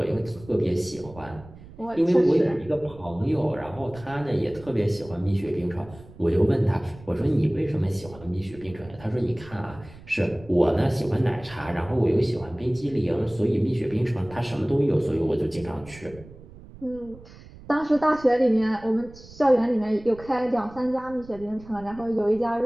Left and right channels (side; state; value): right; noise; rumble, 19 dB below the sound